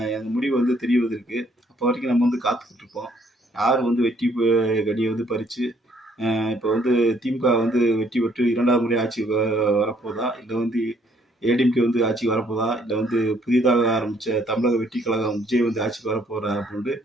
அந்த முடிவு வந்து தெரிவதற்கு அப்போ வரைக்கும் நம்ம வந்து காத்துக்கிட்டு இருப்போம். யார் வந்து வெற்றி கனியை வந்து பறித்து இப்போ வந்து திமுக வந்து வெற்றி பெற்று 2வது முறை ஆட்சி வரப்போதா, இல்லை வந்து ஏடிஎம்கே வந்து ஆட்சிக்கு வரப்போதா, இல்லை வந்து புதிதாக ஆரம்பித்த தமிழக வெற்றி கழகம் விஜய் வந்து ஆட்சிக்கு வரப்போறா அப்படின்ட்டு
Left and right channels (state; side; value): normal; both; correlation 0.65